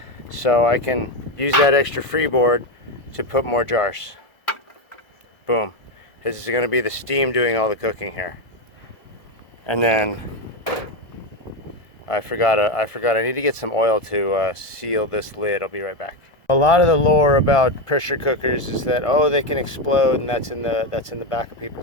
So I can use that extra freeboard to put more jars. Boom. This is going to be the steam doing all the cooking here. And then I forgot I need to get some oil to seal this lid. I'll be right back. A lot of the lore about pressure cookers is that, oh, they can explode, and that's in the back of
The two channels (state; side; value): late; right; 1.6 ms